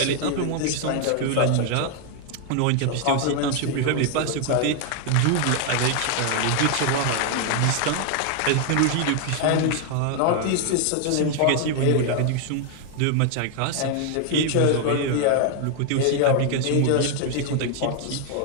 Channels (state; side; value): different; both; correlation 0.00